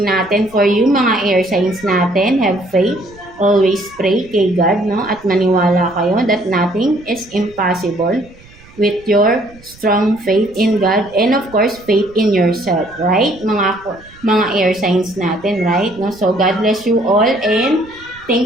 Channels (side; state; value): right; noise; rumble, 24 dB below the sound